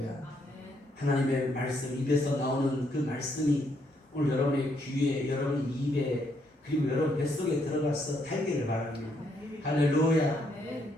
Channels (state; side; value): normal; both; correlation 0.73